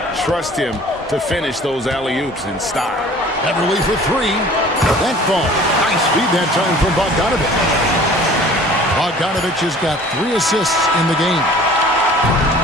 trust him to finish those alley-oops in style. Beverly for 3. That ball. Nice feed that time from Bogdanovich. Bogdanovich has got 3 assists in the game.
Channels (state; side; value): normal; both; correlation 0.48